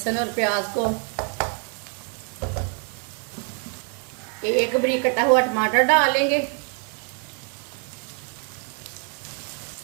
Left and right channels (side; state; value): left; quieter; 40.0 dB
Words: और प्याज को। एक बारीक कटा हुआ टमाटर डालेंगे।